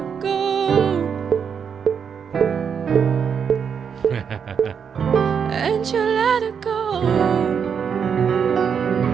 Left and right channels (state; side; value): quieter; left; 7.0 dB